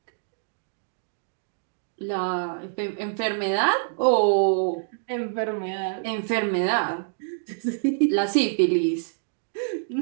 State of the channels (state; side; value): silent; left; digital silence